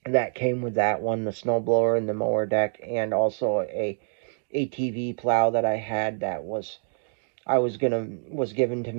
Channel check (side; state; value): left; silent; 61 dB below the other